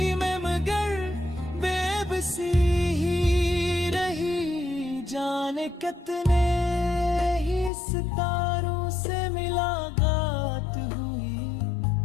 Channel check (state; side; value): drops out; right; at 7.7 s